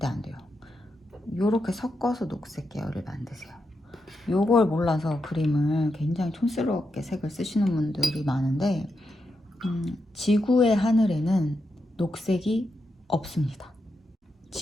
안 돼요. 요렇게 섞어서 녹색 계열을 만드세요. 요걸 몰라서 그림을 굉장히 촌스럽게 색을 쓰시는 분들이 많은데 지구의 하늘에는 녹색이 없습니다.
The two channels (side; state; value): both; normal; correlation 0.85